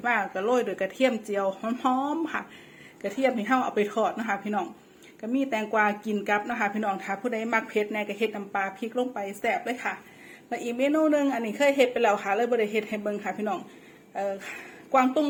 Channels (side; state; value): both; identical; correlation 1.00